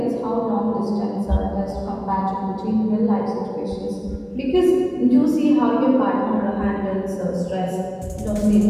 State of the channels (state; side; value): identical; both; correlation 1.00